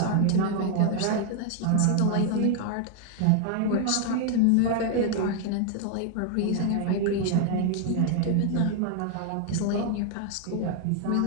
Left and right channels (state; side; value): different; both; correlation 0.00